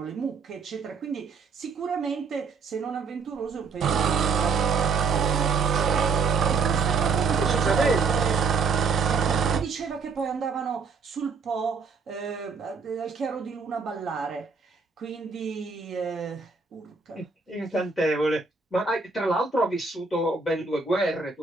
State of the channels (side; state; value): left; quieter; 4.8 dB